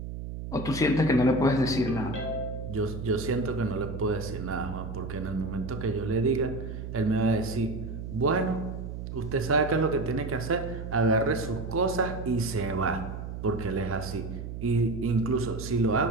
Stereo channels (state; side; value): noise; right; hum, 7 dB below the sound